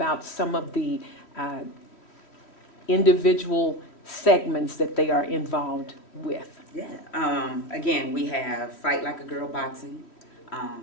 some of the individual segments that they are involved with? Yeah. Again, we have Fight Like a Girl boxing.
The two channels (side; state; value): right; late; 3.1 ms